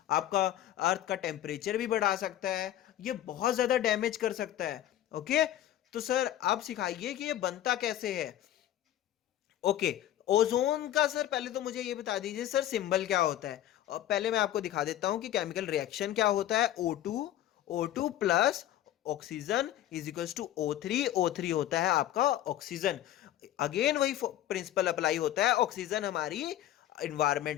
आपका अर्थ का टेम्परेचर भी बढ़ा सकता है, ये बहुत ज्यादा डैमेज कर सकता है। ओके तो सर आप सिखाइए कि ये बनता कैसे है। ओके ओजोन का सर पहले तो मुझे ये बता दीजिए सर सिंबल क्या होता है। और पहले मैं आपको दिखा देता हूं कि केमिकल रिएक्शन क्या होता है। O2 plus oxygen is equal to O3 होता है आपका ऑक्सीजन। अगेन वही प्रिंसिपल अप्लाई होता है, ऑक्सीजन हमारी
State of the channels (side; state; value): right; quieter; 12.5 dB